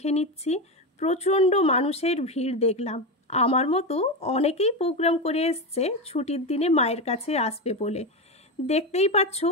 নিচ্ছি। প্রচণ্ড মানুষের ভিড় দেখলাম। আমার মতো অনেকেই প্রোগ্রাম করে এসছে ছুটির দিনে মায়ের কাছে আসবে বলে। দেখতেই পাচ্ছ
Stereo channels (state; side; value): normal; both; correlation 0.15